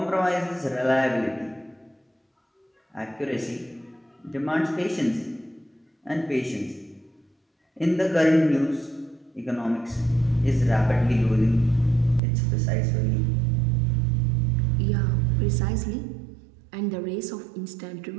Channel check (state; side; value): drops out; left; at 12.2 s